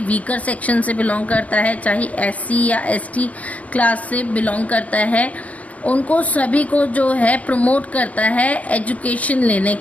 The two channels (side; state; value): right; late; 0.069 ms